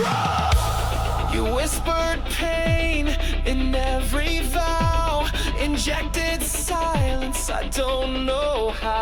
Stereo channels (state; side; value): identical; both; correlation 1.00